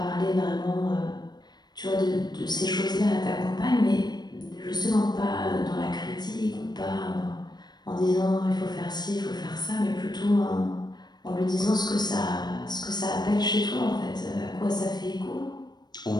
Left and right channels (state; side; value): late; right; 0.20 ms